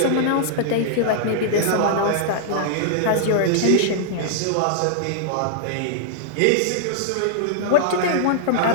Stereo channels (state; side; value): different; both; correlation -0.01